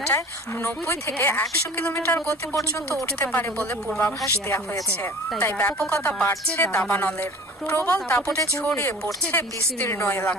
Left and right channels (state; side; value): normal; both; correlation 0.43